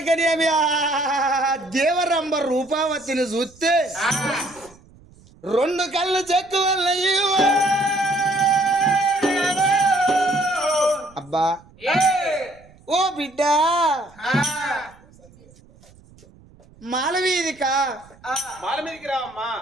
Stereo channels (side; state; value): right; noise; rumble, 26 dB below the sound